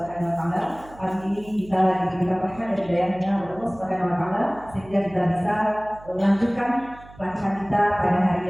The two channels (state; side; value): noise; right; hum, 21 dB below the sound